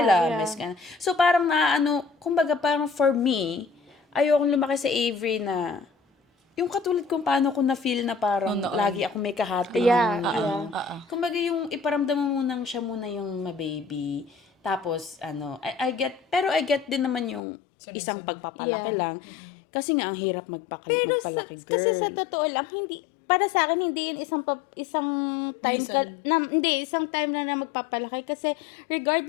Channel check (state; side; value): drops out; right; at 17.4 s